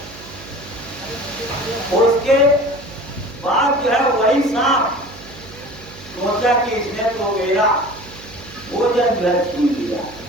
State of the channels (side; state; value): right; noise; hum, 18 dB below the sound